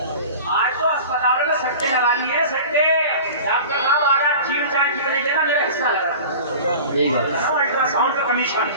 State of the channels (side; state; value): both; inverted; correlation -0.38